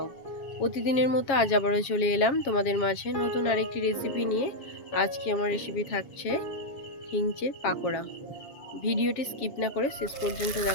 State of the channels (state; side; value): late; right; 7.3 ms